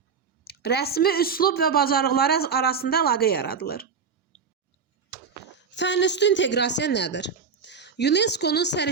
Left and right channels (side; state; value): left; quieter; 5.9 dB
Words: rəsmi üslub və bacarıqları arasında əlaqə yaradılır. Fənüstü inteqrasiya nədir? UNESCO-nun